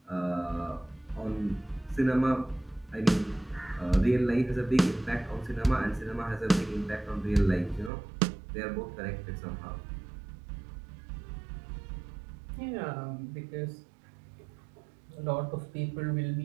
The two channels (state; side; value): drops out; left; at 7.9 s